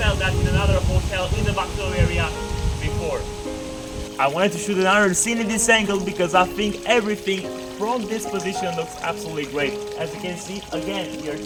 that in another hotel in the Baku area before. I wanted to shoot another scene in this angle because I think everything from this position looks absolutely great. As you can see, again, the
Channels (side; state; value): both; identical; correlation 1.00